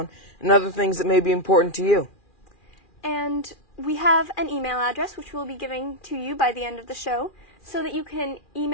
and other things that may be important to you. And we have an email address which we'll be giving to you by the end of the show so that you can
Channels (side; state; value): right; late; 2.4 ms